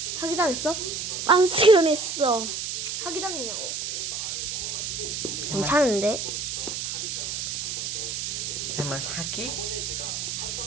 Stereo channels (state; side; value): noise; right; hiss, 3 dB below the sound